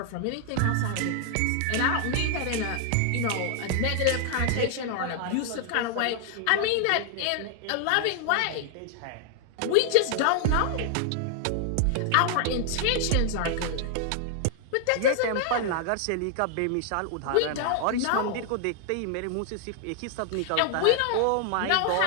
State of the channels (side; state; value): both; different; correlation 0.00